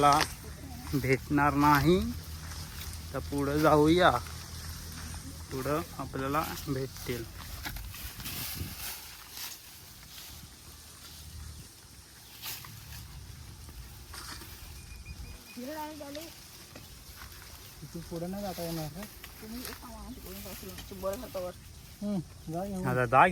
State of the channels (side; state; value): both; identical; correlation 1.00